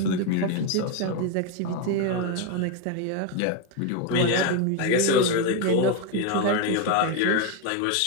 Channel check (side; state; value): both; different; correlation 0.02